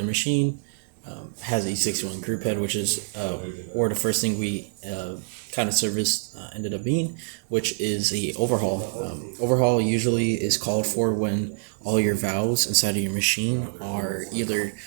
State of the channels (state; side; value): silent; left; digital silence